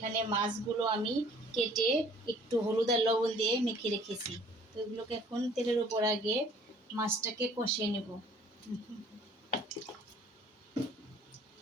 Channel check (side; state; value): both; normal; correlation 0.55